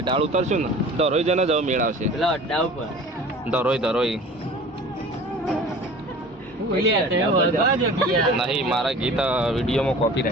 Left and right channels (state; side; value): normal; both; correlation 0.43